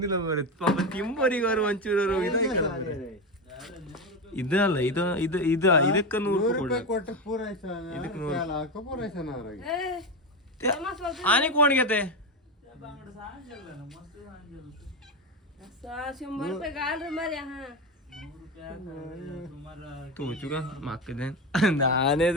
ಮರೆ ಪಾಪ ತಿಂಬರಿಗೆ ಅವರು ಒಂಚೂರು ಇದಲ್ಲ ಇದು ಇದು ಇದು ಇದಕ್ಕೆ 100 ರೂಪಾಯಿ ಕೊಟ್ಟು ಆನೆ ಕೋಣಿಗೆತೆ ತೂಚುಗ ಮಕ್ಕದೇನ್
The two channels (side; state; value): both; normal; correlation 0.16